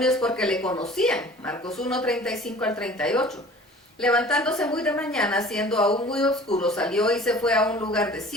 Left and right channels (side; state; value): both; normal; correlation 0.46